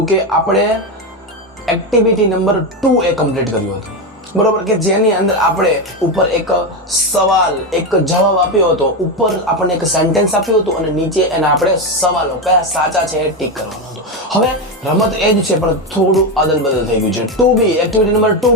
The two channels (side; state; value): both; normal; correlation 0.12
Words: કે આપણે એક્ટિવિટી નંબર 2 એ કમ્પ્લીટ કર્યું હતું બરોબર કે જેની અંદર આપણે ઉપર એક સવાલ એક જવાબ આપ્યો હતો ઉપર આપણને એક સેન્ટેન્સ આપ્યું હતું અને નીચે એના આપણે સવાલો કયા સાચા છે એ ટીક કરવાનો હતો હવે રમત એ જ છે પણ થોડું અદલ બદલ થઈ ગયું છે 2B એક્ટિવિટી નંબર